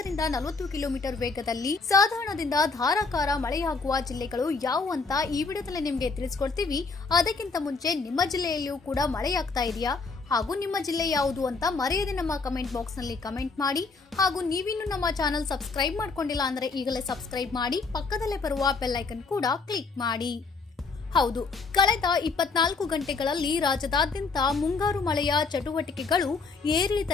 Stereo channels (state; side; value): quieter; right; 4.3 dB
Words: 40 ಕಿಲೋಮೀಟರ್ ವೇಗದಲ್ಲಿ ಸಾಧಾರಣದಿಂದ ಧಾರಾಕಾರ ಮಳೆಯಾಗುವ ಜಿಲ್ಲೆಗಳು ಯಾವುವು ಅಂತ ಈ ವಿಡಿಯೋದಲ್ಲಿ ನಿಮಗೆ ತಿಳಿಸ್ಕೊಡ್ತೀವಿ. ಅದಕ್ಕಿಂತ ಮುಂಚೆ ನಿಮ್ಮ ಜಿಲ್ಲೆಯಲ್ಲಿಯೂ ಕೂಡ ಮಳೆಯಾಗ್ತಾ ಇದೆಯಾ ಹಾಗೂ ನಿಮ್ಮ ಜಿಲ್ಲೆ ಯಾವುದು ಅಂತ ಮರೆಯದೆ ನಮ್ಮ ಕಮೆಂಟ್ ಬಾಕ್ಸ್ ನಲ್ಲಿ ಕಮೆಂಟ್ ಮಾಡಿ. ಹಾಗೂ ನೀವಿನ್ನು ನಮ್ಮ ಚಾನೆಲ್ ಸಬ್ಸ್ಕ್ರೈಬ್ ಮಾಡ್ಕೊಂಡಿಲ್ಲ ಅಂದ್ರೆ ಈಗಲೇ ಸಬ್ಸ್ಕ್ರೈಬ್ ಮಾಡಿ, ಪಕ್ಕದಲ್ಲೇ ಬರುವ ಬೆಲ್ ಐಕನ್ ಕೂಡ ಕ್ಲಿಕ್ ಮಾಡಿ. ಹೌದು, ಕಳೆದ 24 ಗಂಟೆಗಳಲ್ಲಿ ರಾಜ್ಯದಾದ್ಯಂತ ಮುಂಗಾರು ಮಳೆಯ ಚಟುವಟಿಕೆಗಳು